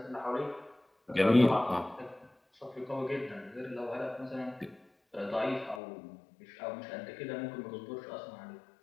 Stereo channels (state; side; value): drops out; right; at 5.8 s